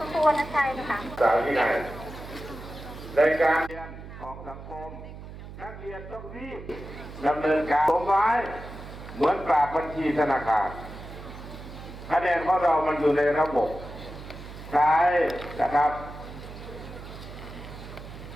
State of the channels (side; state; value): right; noise; hum, 13 dB below the sound